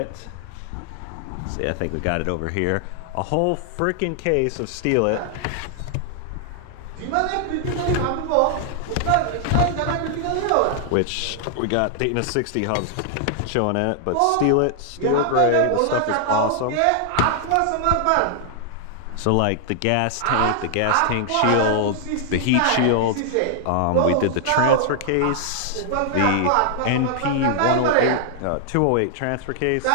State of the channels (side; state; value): both; different; correlation 0.00